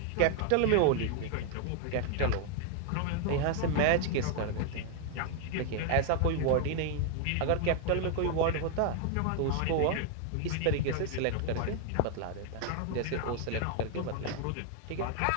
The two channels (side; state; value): both; different; correlation 0.00